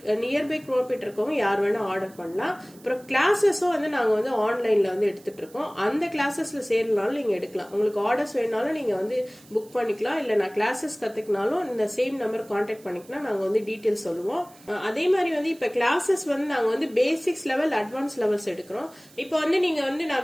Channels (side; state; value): right; noise; hiss, 25 dB below the sound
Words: நியர்பை குரோம்பேட் இருக்கவங்க யார் வேணா ஆர்டர் பண்ணலாம். அப்புறம் கிளாஸஸும் வந்து நாங்க வந்து ஆன்லைன்ல வந்து எடுத்துட்டு இருக்கோம். அந்த கிளாஸஸ்ல சேரனாலும் நீங்க எடுக்கலாம். உங்களுக்கு ஆர்டர்ஸ் வேணாலும் நீங்க வந்து புக் பண்ணிக்கலாம். இல்ல நான் கிளாஸஸ் கத்துக்கினாலும் இந்த சேம் நம்பர் கான்டாக்ட் பண்ணிக்கலாம். நாங்க வந்து டீடைல்ஸ் சொல்லுவோம். அதே மாதிரி வந்து இப்ப கிளாஸஸ் வந்து நாங்க வந்து பேசிக்ஸ் லெவல், அட்வான்ஸ் லெவல்ஸ் எடுக்கிறோம். இப்போ வந்து நீங்க வந்து